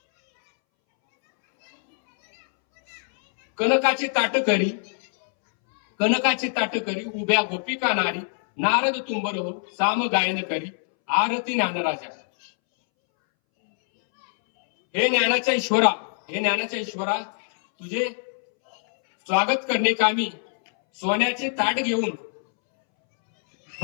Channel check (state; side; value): silent; right; 63 dB below the other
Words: कनकाचे ताट करी उभ्या गोपिका नारी, नारद तुंबर हो साम गायन करी आरती ज्ञानराजा. हे ज्ञानाच्या ईश्वरा तुझे स्वागत करणे कामी सोन्याचे ताट घेऊन